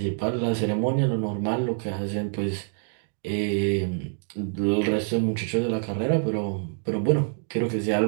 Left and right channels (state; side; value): silent; left; digital silence